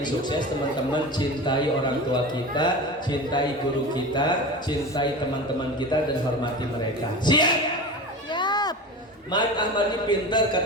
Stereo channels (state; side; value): normal; both; correlation 0.30